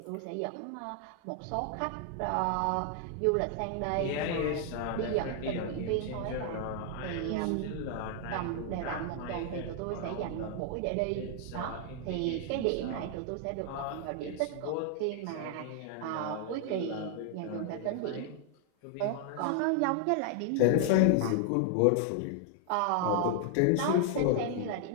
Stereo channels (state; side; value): different; both; correlation 0.00